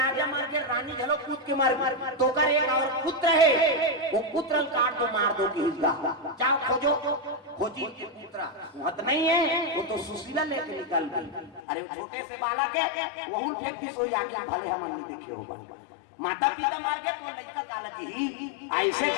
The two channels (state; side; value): drops out; right; at 11.6 s